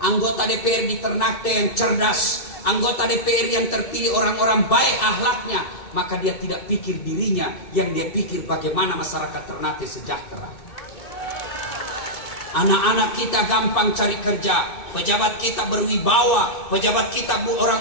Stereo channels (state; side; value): late; right; 2.2 ms